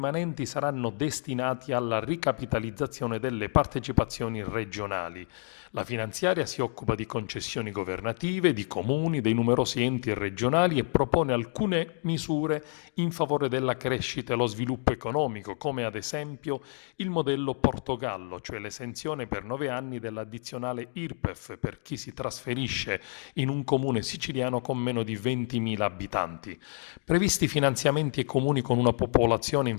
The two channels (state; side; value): silent; right; 58 dB below the other